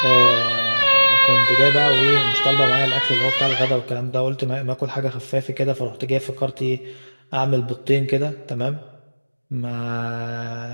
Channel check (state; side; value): inverted; both; correlation -1.00